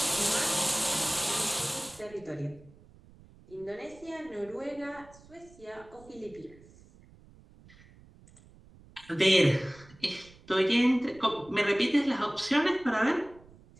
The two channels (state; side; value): noise; right; rumble, 24 dB below the sound